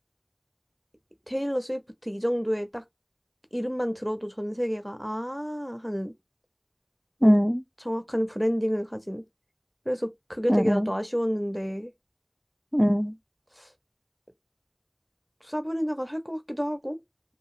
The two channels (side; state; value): both; identical; correlation 1.00